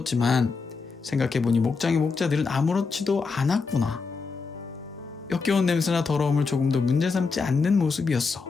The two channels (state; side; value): quieter; right; 4.7 dB